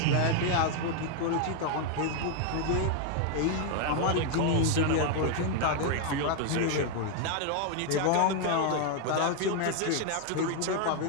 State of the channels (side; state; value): both; different; correlation 0.01